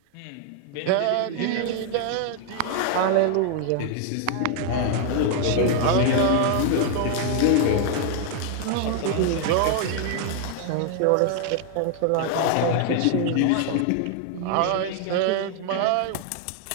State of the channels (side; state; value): both; different; correlation 0.00